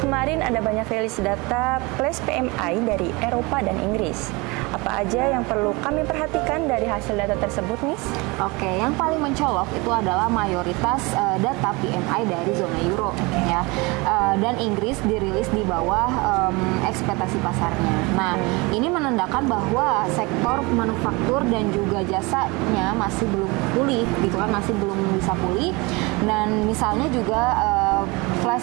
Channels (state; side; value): quieter; left; 25.7 dB